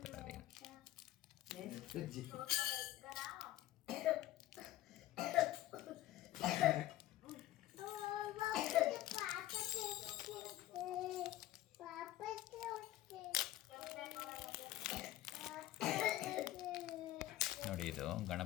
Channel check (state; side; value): quieter; right; 14.9 dB